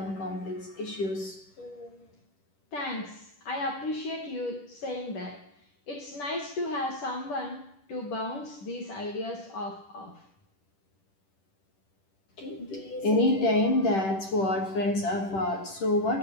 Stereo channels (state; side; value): late; right; 10 ms